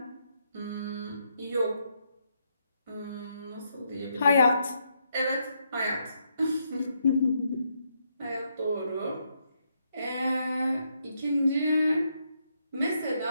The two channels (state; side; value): inverted; both; correlation -0.78